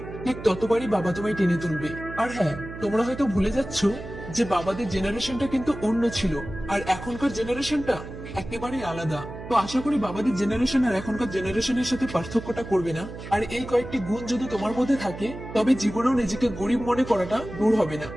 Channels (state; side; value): noise; right; hum, 11 dB below the sound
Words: ঠিক ততবারই বাবা তোমায় টেনে তুলবে। আর হ্যাঁ, তোমরা হয়তো ভুলে যাচ্ছ যে বাবাদের জেনারেশনটা কিন্তু অন্য ছিল, আর এখনকার জেনারেশনটা একেবারেই আলাদা। তো আশা করি বাবাদের জেনারেশন আর এখনকার জেনারেশনের সাথে পার্থক্যটা করবে না। আর এই কয়েকটি গুণ যদি তোমার মধ্যে থাকে তবে জীবনেও নিজেকে গরিব মনে করাটা দূর হবে না।